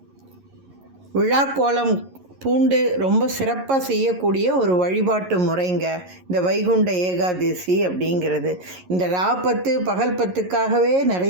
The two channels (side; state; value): left; late; 11 ms